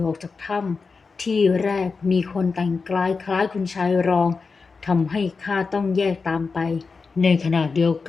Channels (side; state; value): right; quieter; 4.6 dB